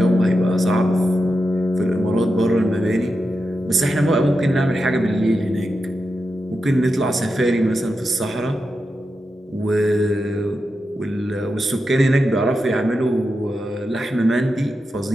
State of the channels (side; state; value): both; normal; correlation 0.89